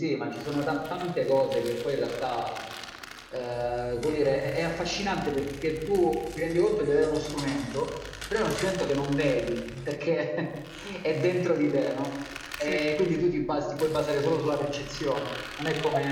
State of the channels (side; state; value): both; identical; correlation 1.00